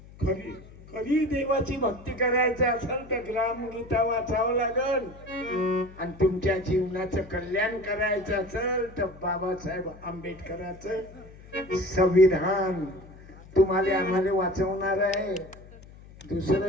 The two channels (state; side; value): noise; left; hum, 20 dB below the sound